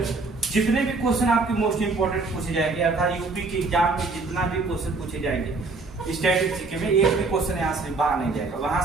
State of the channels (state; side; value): quieter; left; 3.7 dB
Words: जितने भी क्वेश्चन आपके मोस्ट इंपोर्टेंट पूछे जाएंगे, अर्थात यूपी के एग्जाम में जितना भी क्वेश्चन पूछे जाएंगे स्टैटिस्टिक्स में, एक भी क्वेश्चन यहाँ से बाहर नहीं जाएगा, वहां